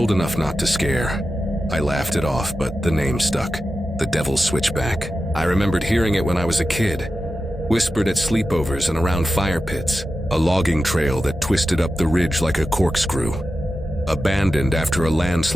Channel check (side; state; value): both; normal; correlation 0.91